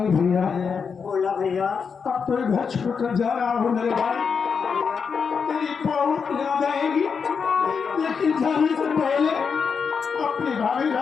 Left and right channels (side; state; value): right; quieter; 5.9 dB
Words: बोला भैया अब तो घर छोड़कर जा रहा हूँ मेरे भाई, तेरी बहुत याद आएगी, लेकिन जाने से पहले अपनी भाभी